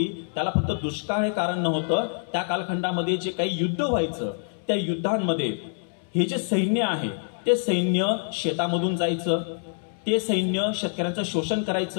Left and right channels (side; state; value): right; silent; 61 dB below the other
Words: त्याला फक्त दुष्काळ हे कारण नव्हतं. त्या कालखंडामध्ये जे काही युद्ध व्हायचं त्या युद्धांमध्ये हे जे सैन्य आहे ते सैन्य शेतामधून जायचं, ते सैन्य शेतकऱ्यांचं शोषण